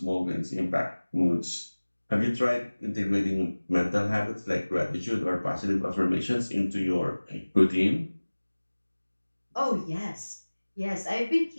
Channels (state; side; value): inverted; both; correlation -1.00